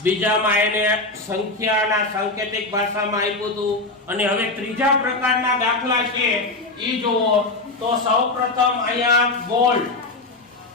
બીજામાં એને સંખ્યાના સાંકેતિક ભાષામાં આપ્યું હતું, અને હવે ત્રીજા પ્રકારના દાખલા છે ઈ જુઓ. તો સૌપ્રથમ અહીંયા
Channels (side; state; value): right; quieter; 3.1 dB